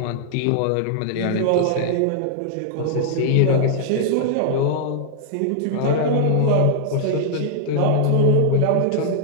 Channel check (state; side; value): different; both; correlation -0.01